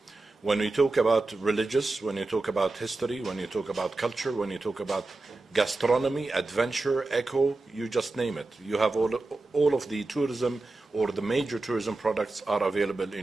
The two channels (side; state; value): left; quieter; 3.3 dB